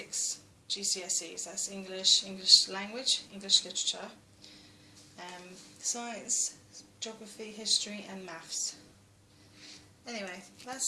GCSEs. That's English, English language, English literature, science, geography, history and maths. Anyway,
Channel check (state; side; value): identical; both; correlation 1.00